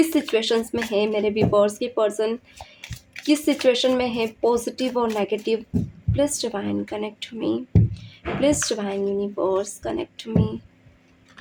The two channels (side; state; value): both; identical; correlation 1.00